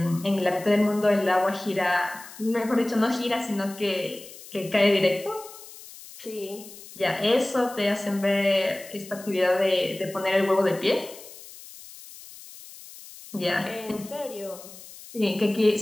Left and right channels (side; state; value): left; noise; hiss, 17 dB below the sound